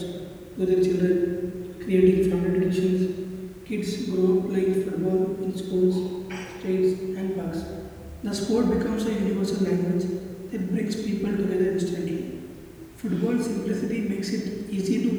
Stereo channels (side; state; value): both; identical; correlation 1.00